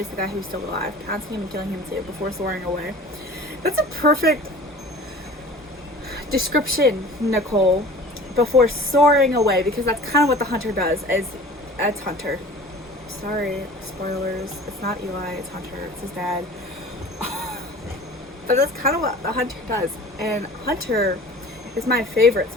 the guy who was still alive, pouncing him and killing him too, before soaring away. That's a perfect description, Nickolle. Before soaring away, because that's kind of what the hunter does. It's Hunter. Sorry, spoilers. It's not Eli, it's Hunter. It's his dad. But that's kind of what the hunter does. And Hunter is my favorite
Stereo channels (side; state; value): both; normal; correlation 0.42